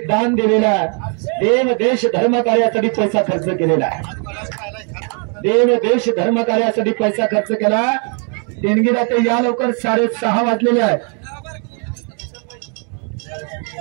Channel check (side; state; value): left; quieter; 39.3 dB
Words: दिलेलं आहे देव देश धर्म कार्यासाठी पैसा खर्च केलेला आहे देव देश धर्म कार्यासाठी पैसा खर्च केला देणगीदाते या लवकर 6:30 वाजलेले आहेत